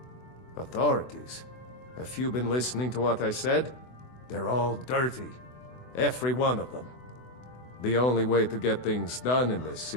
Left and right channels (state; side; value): late; right; 24 ms